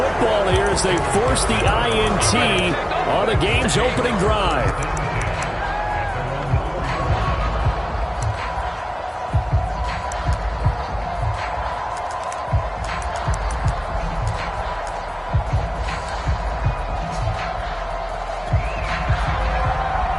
here as they force the INT on the game's opening drive.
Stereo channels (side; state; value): both; identical; correlation 1.00